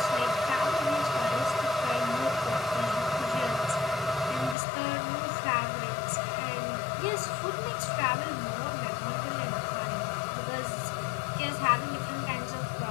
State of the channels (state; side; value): drops out; right; at 4.5 s